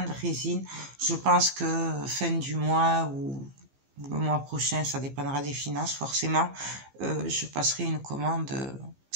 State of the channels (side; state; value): left; late; 15 ms